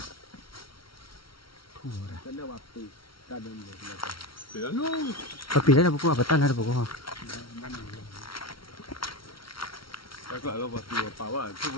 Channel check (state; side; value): late; right; 0.74 ms